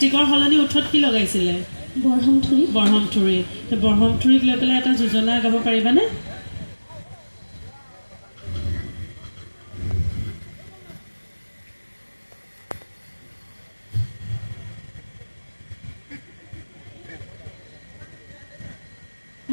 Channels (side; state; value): both; inverted; correlation -1.00